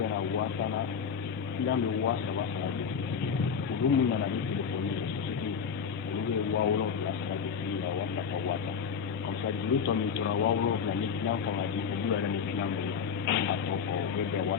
wasana islam be wasa wasa ulu na na ni téléphone ni ulu be wawlo la sa di ya wasa ka wasa comme ça du temps mi tora wawlo la ni islam ko ngadi ko du ni islam be a to ko be be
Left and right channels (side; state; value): right; quieter; 6.7 dB